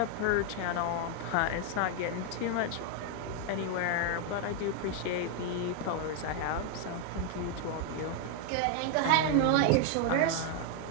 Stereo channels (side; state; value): both; different; correlation 0.00